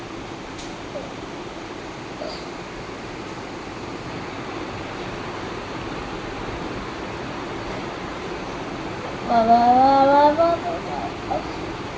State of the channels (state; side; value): identical; both; correlation 1.00